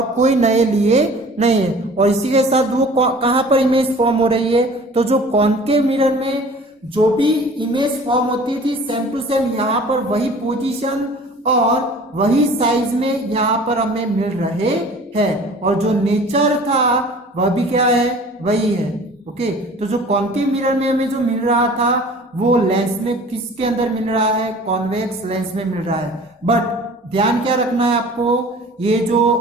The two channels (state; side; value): normal; both; correlation 0.46